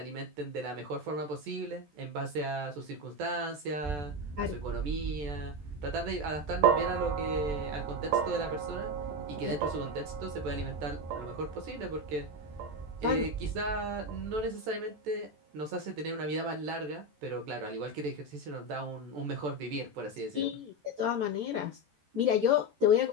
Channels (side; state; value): left; late; 14 ms